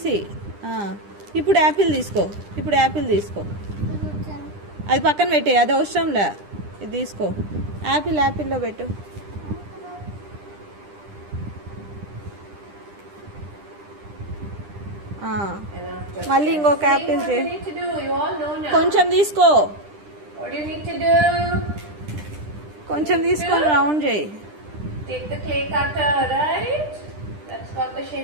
ఇప్పుడు యాపిల్ తీసుకో. అది పక్కన పెట్టే, అది అవసరంలే. ఇది తీసుకో. యాపిల్లో పెట్టు. మళ్ళీ ఇంకొక యాపిల్ చేయి. కొంచెం తీసుకో. What do you need to do? కొంచెం తీసుకొని రౌండ్ చేయి. Take the clay cutter, right? That's got the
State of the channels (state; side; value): late; left; 10 ms